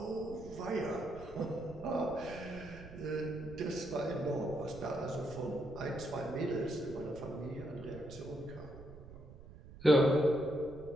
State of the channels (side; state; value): right; noise; rumble, 16 dB below the sound